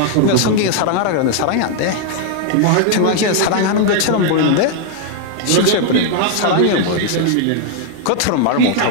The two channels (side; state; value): both; different; correlation 0.00